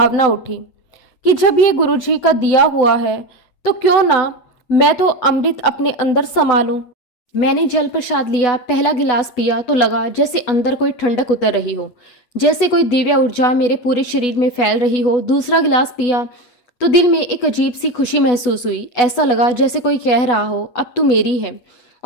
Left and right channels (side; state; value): right; late; 8.2 ms